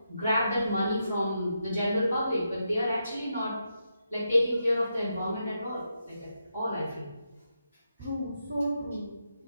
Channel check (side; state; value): both; inverted; correlation -0.84